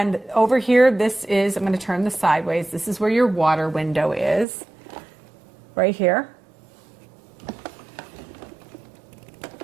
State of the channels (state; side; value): drops out; left; at 4.5 s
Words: over here, this is, I'm going to turn this sideways. This is where your water window is, right here.